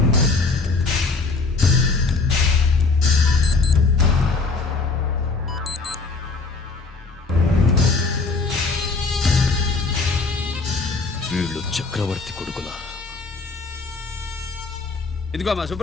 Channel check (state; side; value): quieter; right; 4.0 dB